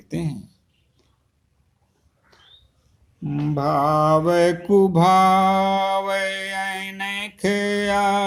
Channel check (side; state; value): both; identical; correlation 1.00